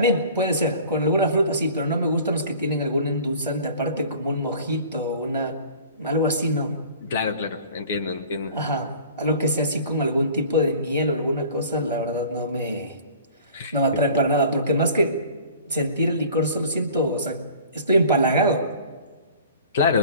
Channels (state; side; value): inverted; both; correlation -0.46